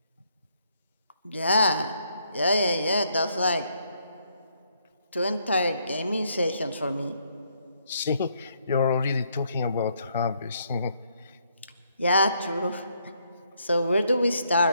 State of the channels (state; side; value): inverted; both; correlation -0.73